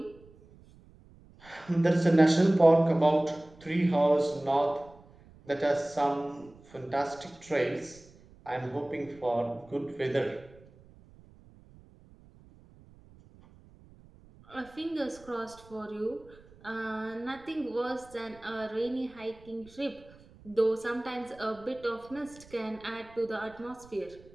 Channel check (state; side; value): noise; right; rumble, 24 dB below the sound